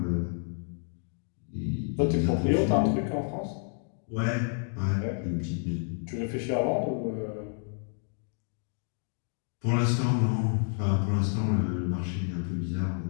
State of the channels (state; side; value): silent; right; 55 dB below the other